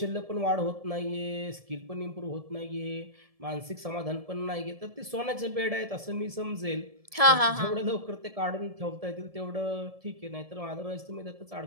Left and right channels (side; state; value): left; late; 1.7 ms